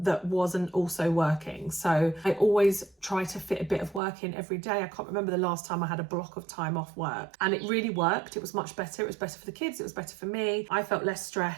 wasn't also working. So I always try to fit a bit of work in every day. I can't remember the last time I had a block of time off work, and it really worked. It was much better. It was better for the kids. It was better for me. I felt less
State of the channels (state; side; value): drops out; left; at 4.0 s